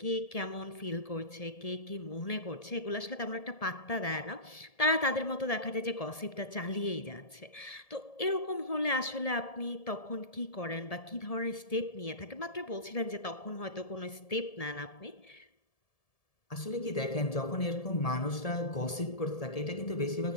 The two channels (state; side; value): late; right; 1.7 ms